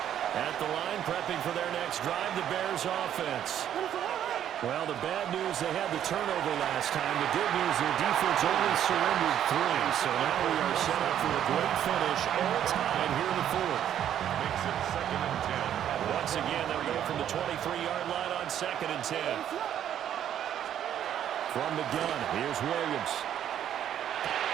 At the line, prepping for their next drive, the Bears offense. Well, the bad news, they had the turnover last time. The good news, their defense only surrendered 3. So now we are set up for a great finish, all tied here in the 4th. Makes it 2nd and 10. Once again, they'll go from the 23-yard line on 2nd and 10. From the gun, here's Williams.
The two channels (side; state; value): left; quieter; 10.3 dB